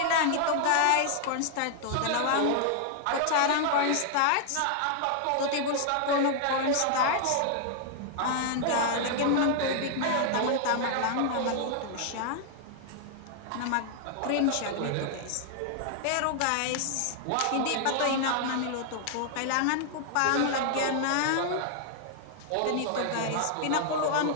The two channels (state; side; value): different; both; correlation 0.00